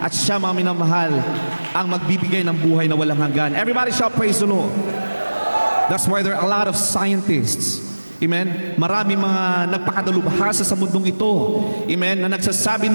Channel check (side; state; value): both; inverted; correlation -1.00